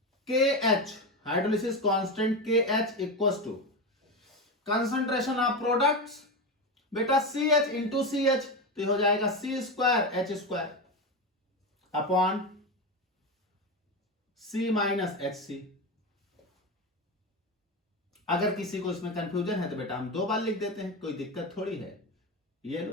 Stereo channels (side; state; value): both; normal; correlation 0.17